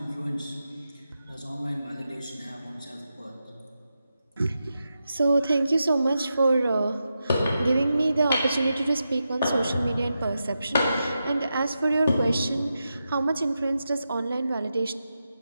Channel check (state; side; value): inverted; both; correlation -0.88